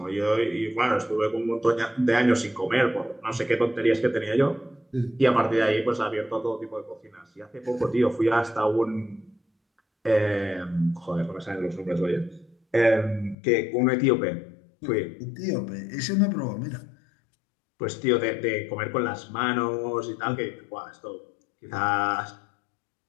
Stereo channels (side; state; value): right; drops out; at 13.4 s